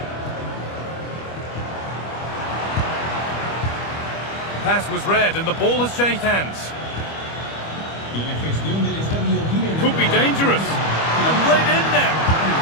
Pass was read and the ball has changed hands. Could be dangerous. And played in there.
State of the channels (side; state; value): right; late; 25 ms